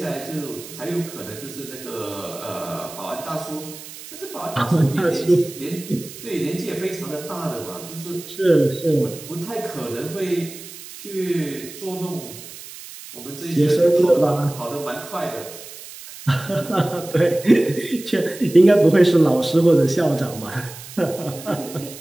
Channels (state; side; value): noise; right; hiss, 15 dB below the sound